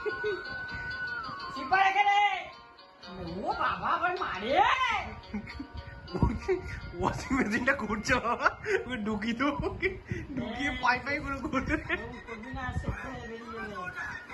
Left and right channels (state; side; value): identical; both; correlation 1.00